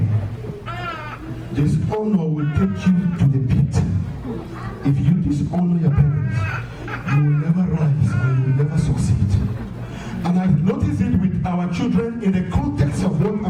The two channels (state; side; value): identical; both; correlation 1.00